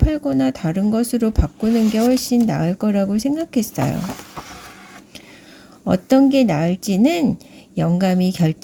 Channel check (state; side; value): identical; both; correlation 1.00